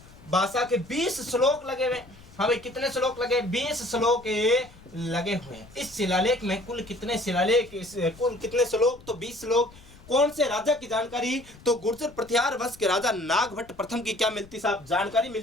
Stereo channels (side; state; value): left; noise; rumble, 22 dB below the sound